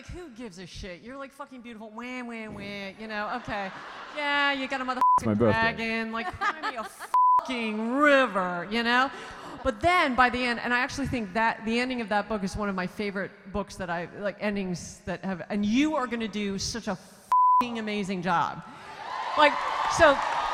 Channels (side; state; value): both; identical; correlation 1.00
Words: who gives a shit? You're, like, fucking beautiful. Wah, wah, wah. You know, okay. Yeah, you got a motherfucking dragon. Like, cry me a fucking river, you know? But then, by the end, and I actually think that the ending of that book is one of my favorite books that I... Like, endings that have... And you are going to do such a fucking amazing job. Like, So